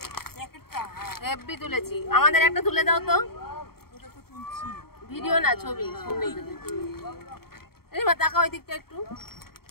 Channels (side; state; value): right; late; 0.94 ms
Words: হেভি তুলেছি। আমাদের একটা তুলে দাও তো, ভিডিও না ছবি। এই মা তাকাও ওই দিকটা একটু।